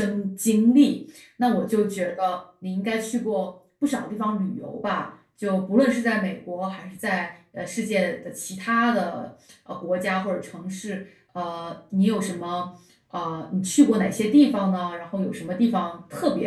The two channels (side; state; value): both; identical; correlation 1.00